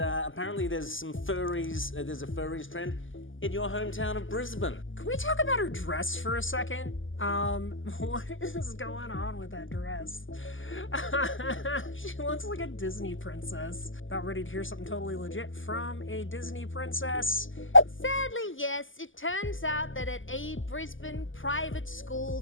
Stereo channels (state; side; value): late; right; 0.58 ms